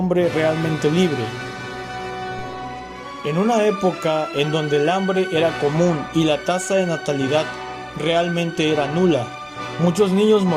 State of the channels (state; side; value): identical; both; correlation 1.00